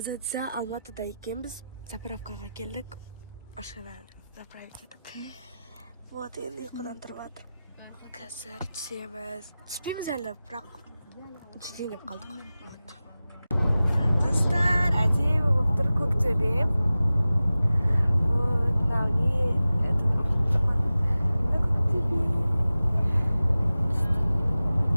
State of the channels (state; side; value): inverted; both; correlation -0.95